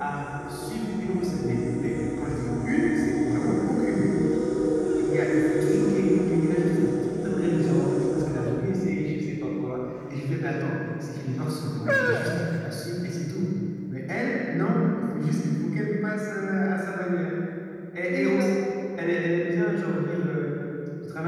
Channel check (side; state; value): both; identical; correlation 1.00